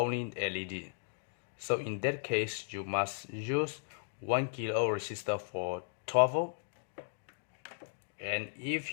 LED. So in that case, you must use 1 kilo resistor for 12 volt. And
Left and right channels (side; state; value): right; silent; digital silence